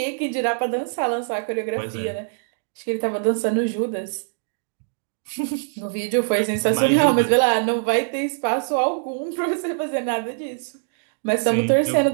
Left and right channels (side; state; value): left; silent; digital silence